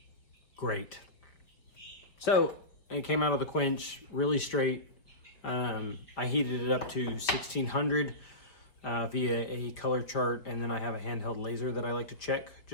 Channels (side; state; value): right; late; 4.9 ms